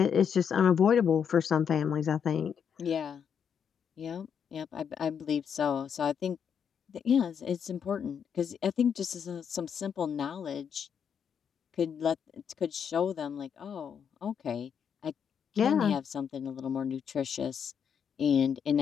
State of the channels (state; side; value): quieter; right; 7.5 dB